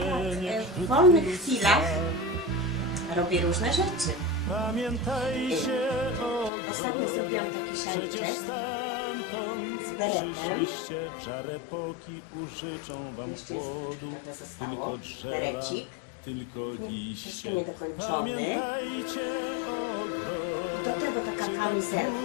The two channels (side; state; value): right; drops out; at 6.5 s